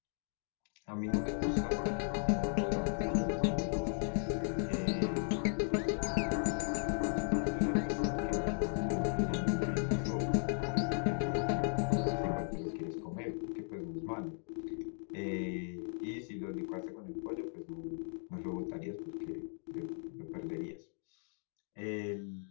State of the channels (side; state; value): right; silent; 53 dB below the other